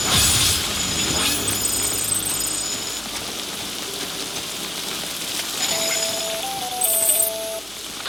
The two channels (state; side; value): noise; right; hum, 25 dB below the sound